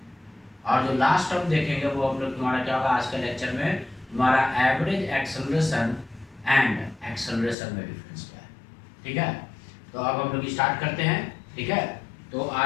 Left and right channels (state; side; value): drops out; right; at 7.6 s